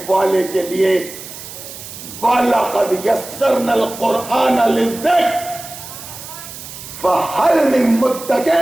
والے کے لیے۔ وَلَقَدْ يَسَّرْنَا الْقُرْآنَ لِلذِّكْرِ فَهَلْ مِن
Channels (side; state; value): right; noise; hiss, 13 dB below the sound